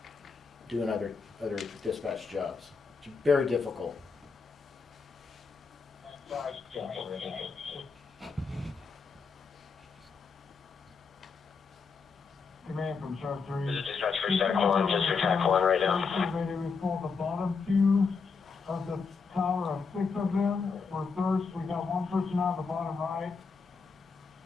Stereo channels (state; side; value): quieter; right; 5.1 dB